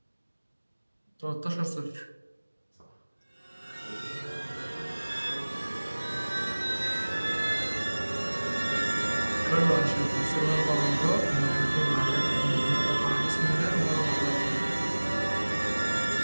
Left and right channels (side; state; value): both; inverted; correlation -1.00